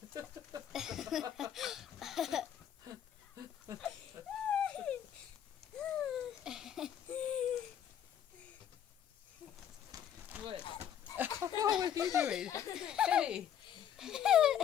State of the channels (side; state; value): right; quieter; 9.6 dB